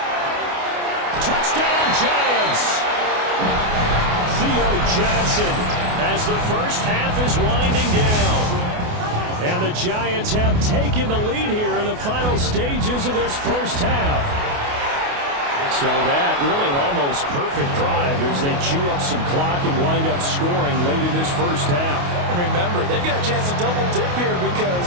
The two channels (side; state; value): left; late; 28 ms